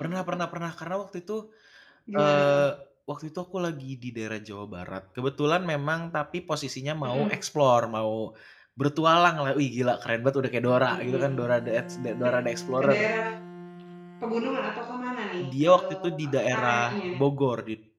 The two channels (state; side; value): identical; both; correlation 1.00